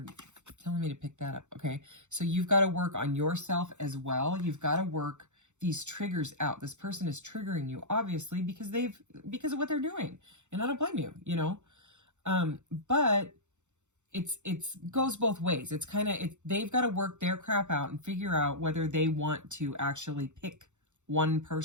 telling me to pick that up. Okay. So you've got to work on yourself as well. You've got to work these triggers out. This person is triggering you, obviously, because of what they're doing. And I don't blame you, you know? But it's goes both ways. It's kind of, they've got to work their crap out and figure out whether they want to actually pick one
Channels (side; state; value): left; late; 0.84 ms